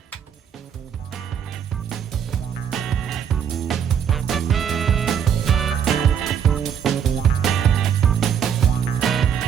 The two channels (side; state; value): left; quieter; 8.2 dB